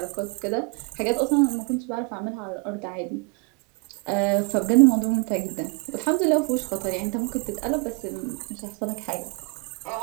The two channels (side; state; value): left; quieter; 33.3 dB